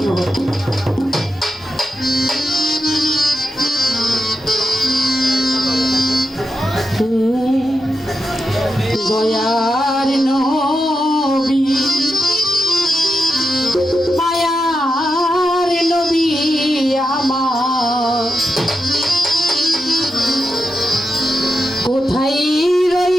দয়ার নবী মায়ার নবী আমার কোথায়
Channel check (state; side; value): normal; both; correlation 0.87